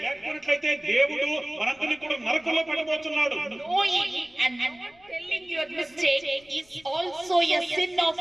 లేకపోయినట్లయితే దేవుడు మనందరినీ కూడా నరకంలో పెట్టబోతున్నాడు. Knowing and not telling your mistake is also a sin of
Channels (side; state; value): left; noise; rumble, 30 dB below the sound